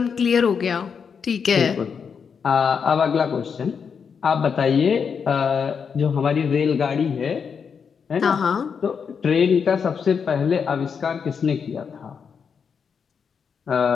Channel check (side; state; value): right; quieter; 6.4 dB